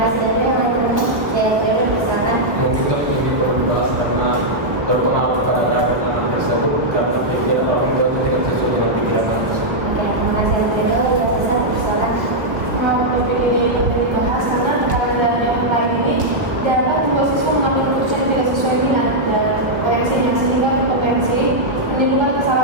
dari yang lain. Saya perlu misalkan. Kita perlu dibahas karena berpengaruh pada keadaan tersebut karena pikiran orang tua tidak sesuai dengan pikiran anak tersebut. Oke, terima kasih Alfredo. Ya, Ustaz, silakan. Topik ini perlu dibahas karena tekanan dari yang lain ini dapat membuat siswa mengambil keputusan yang tidak sesuai minat dan potensinya sehingga berpotensi menimbulkan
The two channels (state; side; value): late; left; 1.1 ms